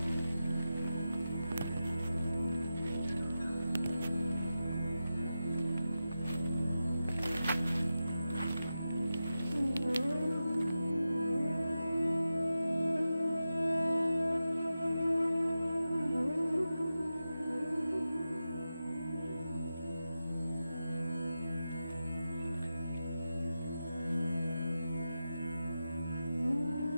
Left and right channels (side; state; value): both; inverted; correlation -0.92